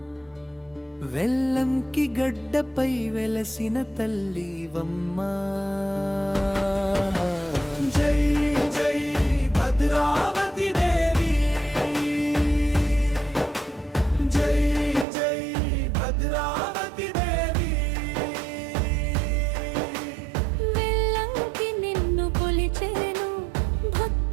వెల్లంకి గడ్డపై వెలసిన తల్లివమ్మా. జై జై భద్రావతి దేవి, జై జై భద్రావతి దేవి. వెల్లంకి నిన్ను కొలిచేను,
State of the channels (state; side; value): drops out; left; at 15.1 s